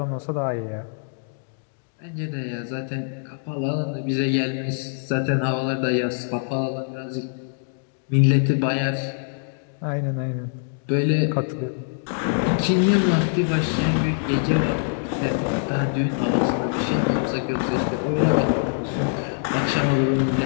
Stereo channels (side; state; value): right; silent; digital silence